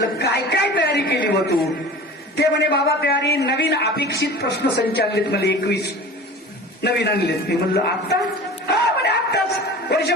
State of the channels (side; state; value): both; normal; correlation 0.38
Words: काय काय तयारी केली व तू? ते म्हणे बाबा तयारी, नवीन अपेक्षित प्रश्न संच आणलेत मला 21 नवीन आणलेत. मी म्हणलं आत्ता? हा म्हणे आत्ताच,